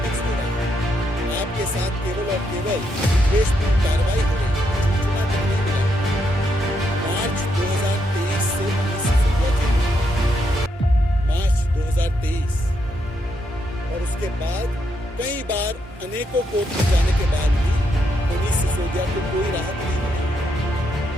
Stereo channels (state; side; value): normal; both; correlation 0.79